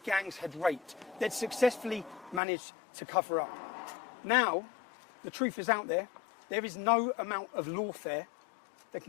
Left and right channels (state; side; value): drops out; right; at 2.4 s